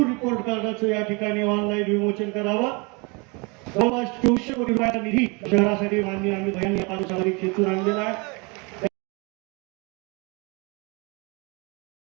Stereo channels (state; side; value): quieter; left; 29.7 dB